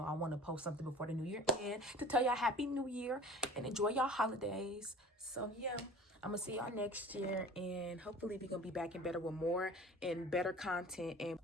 I want to post something before the new year end to tell y'all happy new year and enjoy y'all holidays. So yeah, I'm gonna see y'all next year, and hopefully we're gonna be back and better with more and better content. And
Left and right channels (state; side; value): normal; both; correlation 0.43